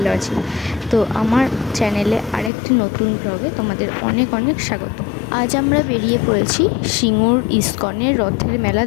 আছি। তো আমার চ্যানেলে আরেকটি নতুন ব্লগে তোমাদের অনেক অনেক স্বাগত। আজ আমরা বেরিয়ে পড়েছি সিঙ্গুর ইস্কনের রথের মেলা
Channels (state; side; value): drops out; right; at 2.5 s